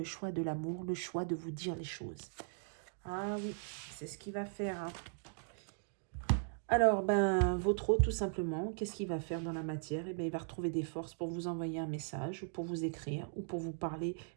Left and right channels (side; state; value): left; silent; digital silence